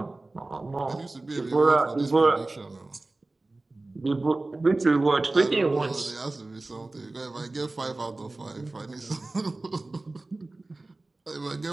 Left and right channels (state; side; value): quieter; left; 3.1 dB